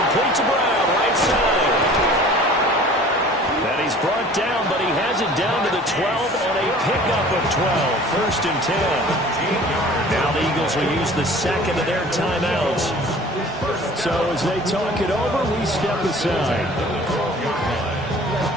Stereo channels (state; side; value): normal; both; correlation 0.47